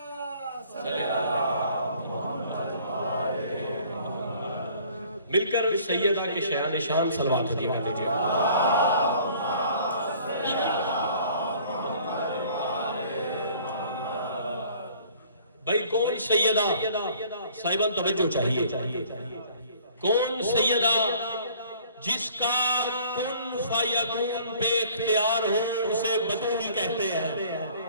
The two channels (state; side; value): inverted; both; correlation -0.54